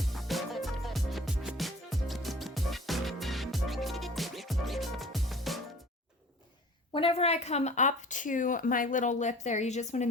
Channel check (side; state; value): both; normal; correlation 0.45